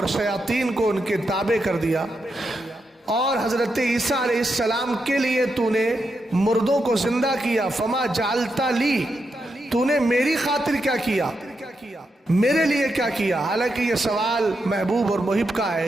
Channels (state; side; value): normal; both; correlation 0.85